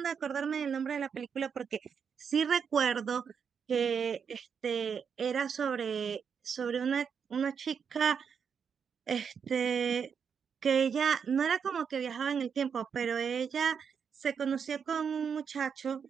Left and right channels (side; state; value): left; quieter; 6.8 dB